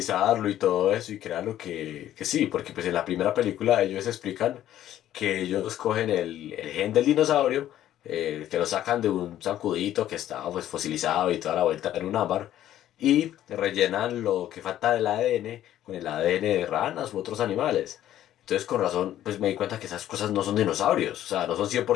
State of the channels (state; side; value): quieter; right; 12.3 dB